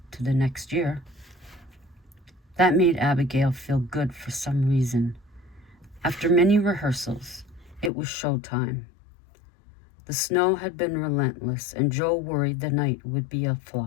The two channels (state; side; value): drops out; right; at 7.9 s